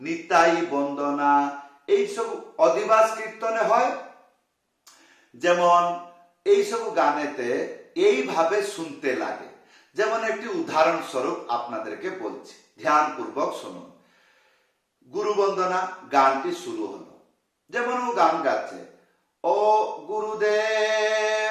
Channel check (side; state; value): both; identical; correlation 1.00